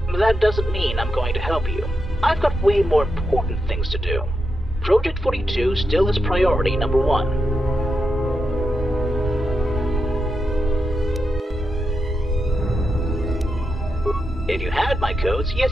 That doesn't mean I'm going to help you. I've got way more important things to do. Project 42 still is priority number 1. If you had my codes,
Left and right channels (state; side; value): normal; both; correlation 0.86